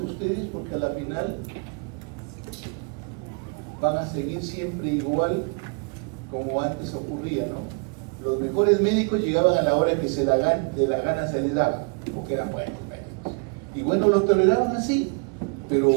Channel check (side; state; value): left; quieter; 36.9 dB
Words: porque a la final van a seguir siempre igual como antes ocurría, ¿no? Los mejores médicos llegaban a la hora que de la gana se les daba, porque eran buenos médicos. Y bueno, los toleraban así, pero